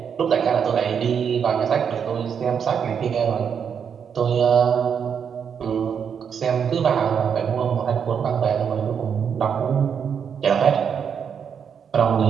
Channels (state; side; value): quieter; left; 7.3 dB